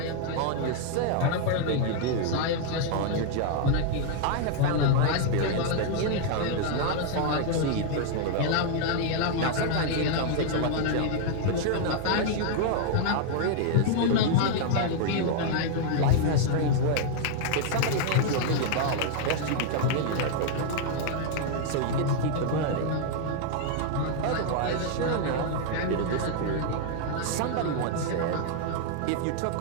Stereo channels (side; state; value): both; different; correlation 0.00